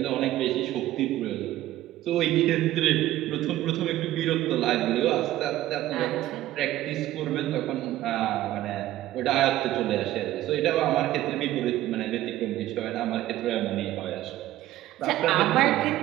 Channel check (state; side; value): quieter; left; 14.6 dB